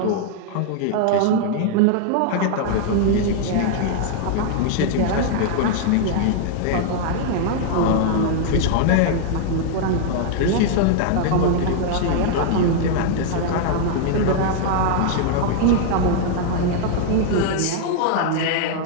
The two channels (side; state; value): both; different; correlation -0.01